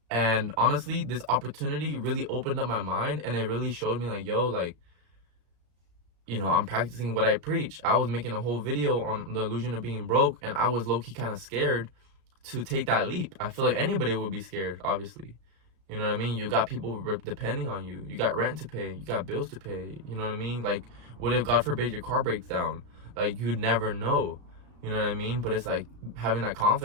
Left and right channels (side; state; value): left; late; 34 ms